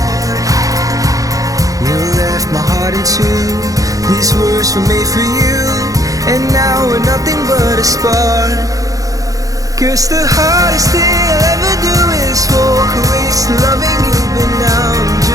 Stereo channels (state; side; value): late; left; 0.17 ms